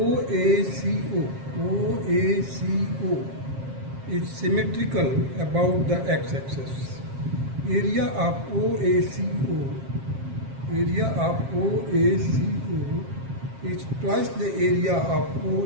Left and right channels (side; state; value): left; late; 7.4 ms